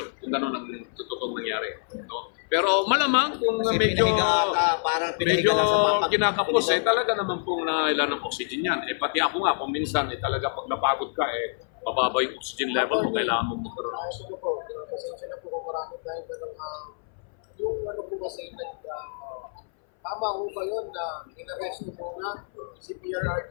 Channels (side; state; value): right; silent; 58 dB below the other